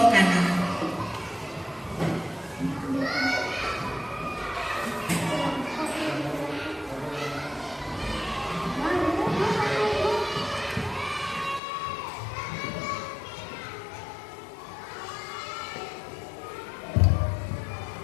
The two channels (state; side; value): drops out; right; at 11.6 s